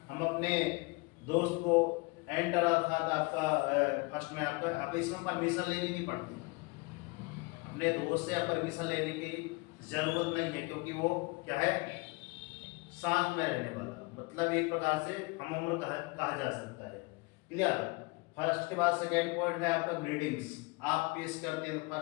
हम अपने दोस्त को एंटर, अर्थात आपका फर्स्ट में आपका इसमें परमिशन लेनी नहीं पड़ती। अपने दोस्त से आप परमिशन लेने की जरूरत नहीं है, क्योंकि वो क्या है, साथ में रहने वाला, मतलब एक प्रकार से हम उम्र कहा जा सकता है। क्लियर? फर्स्ट के बाद सेकेंड पॉइंट है आपका ग्रीटिंग्स। आप पेश करते हैं तो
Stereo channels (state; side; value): quieter; right; 26.6 dB